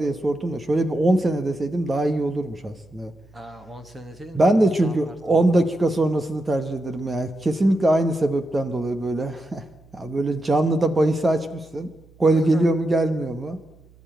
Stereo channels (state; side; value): noise; right; hum, 28 dB below the sound